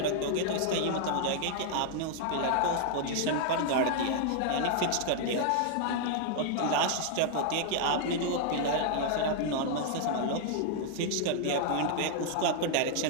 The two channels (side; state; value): both; different; correlation 0.00